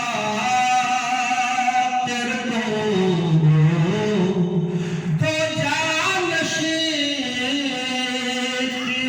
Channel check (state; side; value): identical; both; correlation 1.00